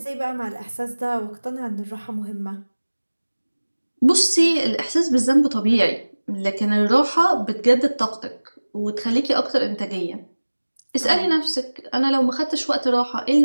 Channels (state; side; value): inverted; both; correlation -1.00